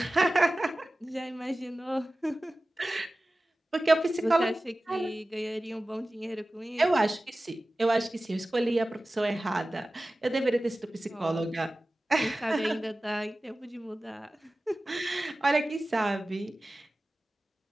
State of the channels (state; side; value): normal; both; correlation 0.96